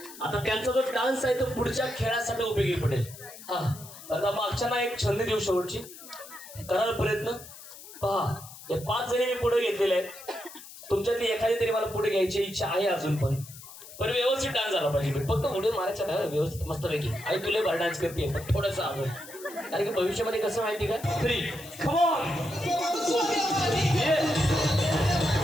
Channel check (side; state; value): left; noise; hiss, 16 dB below the sound